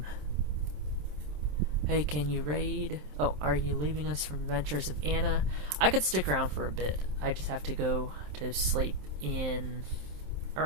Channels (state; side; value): late; left; 27 ms